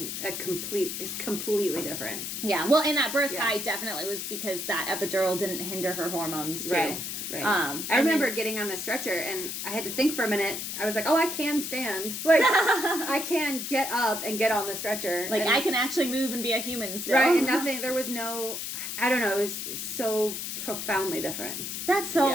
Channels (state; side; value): noise; left; hiss, 5 dB below the sound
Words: completely different. Yeah. Well, and that birth high definitely was because that epidural didn't hinder her hormones, too. Right. Right. I remember getting on the stretcher, and I had to think for a minute. I was like, I can stand. Like, I can get up and get on the stretcher. Like, I can actually move and be a human still. Right, and there was no, I don't know, it was so profoundly different. That's so